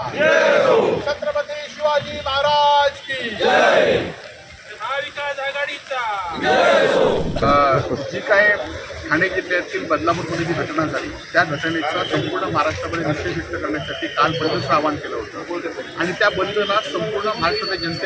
छत्रपती शिवाजी महाराज की महाविकास आघाडीचा जी काय ठाणे जिल्ह्यातील बदलापूरमध्ये जी घटना झाली त्या घटनेचा संपूर्ण महाराष्ट्रामध्ये निषेध व्यक्त करण्यासाठी काल बंदचं आवाहन केलं होतं आणि त्या बंदला संपूर्ण महाराष्ट्राच्या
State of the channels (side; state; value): both; identical; correlation 1.00